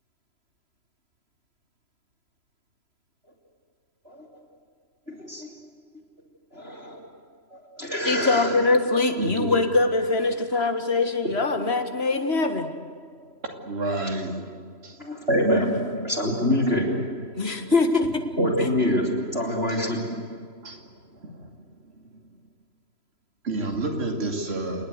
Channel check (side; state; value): left; late; 3.0 ms